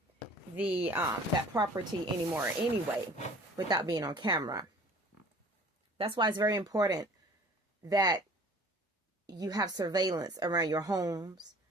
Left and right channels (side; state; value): both; normal; correlation 0.48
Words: the that property anymore anyway without being on camera. That's why it's very important that you have surveillance around your homes